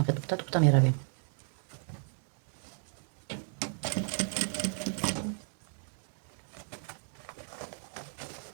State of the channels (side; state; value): left; silent; 55 dB below the other